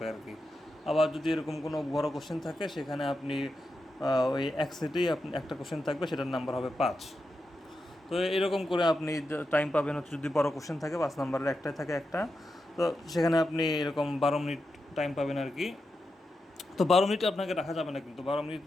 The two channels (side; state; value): both; normal; correlation 0.88